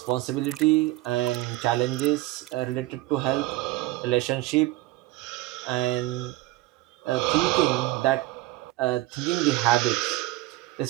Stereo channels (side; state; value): left; quieter; 18.4 dB